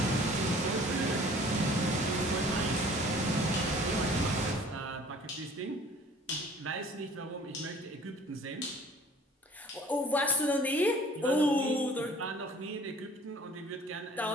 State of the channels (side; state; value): both; normal; correlation 0.51